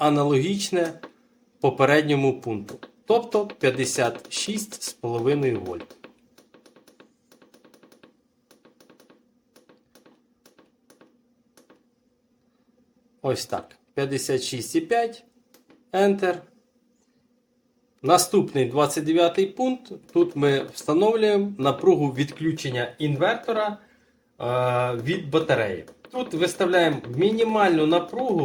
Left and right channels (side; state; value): both; identical; correlation 1.00